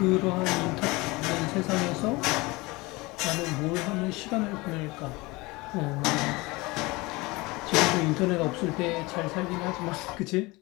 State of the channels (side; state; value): right; quieter; 23.2 dB